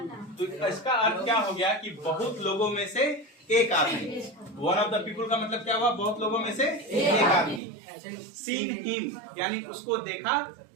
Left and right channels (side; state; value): left; drops out; at 7.6 s